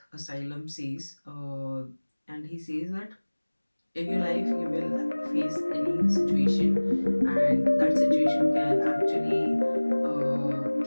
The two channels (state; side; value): inverted; both; correlation -1.00